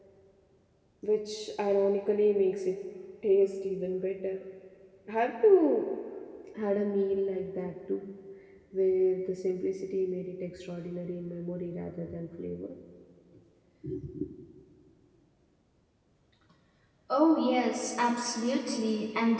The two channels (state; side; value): identical; both; correlation 1.00